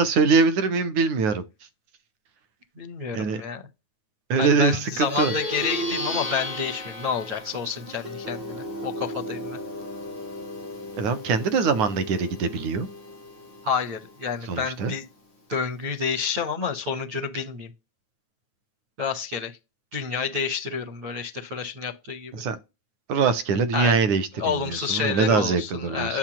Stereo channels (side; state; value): left; late; 9.4 ms